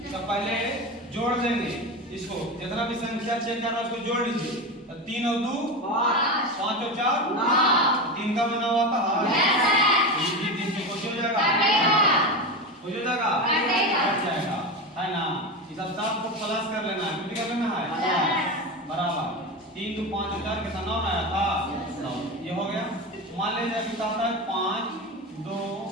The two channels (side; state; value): both; normal; correlation 0.21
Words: तो पहले जोड़ देंगे इसको, जितना भी संख्या चेक करना उसको जोड़ लीजिए। तो 3 और 2 5 और 4 3 का बना हुआ था ये 3 से कुछ हो जाएगा, कुछ हो जाएगा कट जाएगा, है ना। इस सब को प्लस कर लेना है, कितना कर लेना है बराबर 3 2 5 और 4 कितना 9 आया था 9, ये हो गया। मान लीजिए कि कहता है 5 2